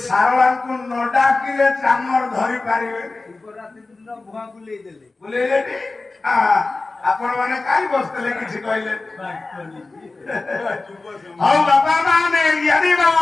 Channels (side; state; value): right; quieter; 3.5 dB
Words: ସାରଳାଙ୍କୁ ନ ଡାକିଲେ ଚାମର ଧରି ପାରିବେ ଶିବରାତ୍ରି ଦିନ ଭୁଆ ବୁଲେଇ ଦେଲେ ବୁଲେଇଲେନି ଆପଣ ମାନେ କାହିଁ ବସିଥିଲେ କିଛି କହିଲେ ହଉ ବାପା ମାନେ ଜ୍ଞାନୀ